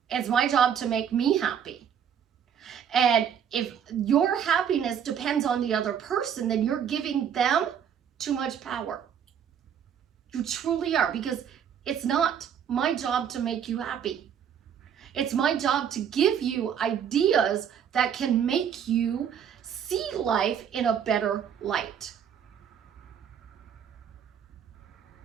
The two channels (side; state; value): left; quieter; 8.4 dB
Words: It's my job to make me happy. And if your happiness depends on the other person, then you're giving them too much power. You truly are, because it's not my job to make you happy. It's my job to give you ideas that can make you see life in a better light.